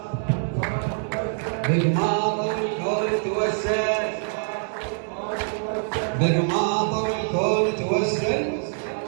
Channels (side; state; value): left; silent; 59 dB below the other